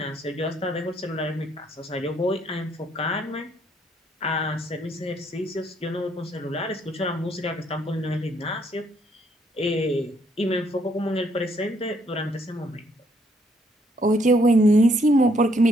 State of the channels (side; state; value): both; normal; correlation 0.69